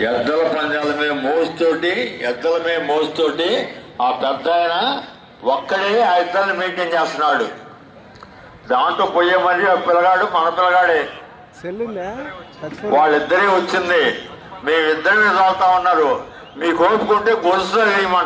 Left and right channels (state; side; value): identical; both; correlation 1.00